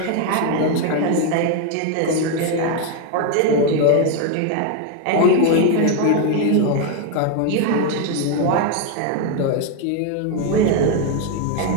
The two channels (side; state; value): both; different; correlation 0.01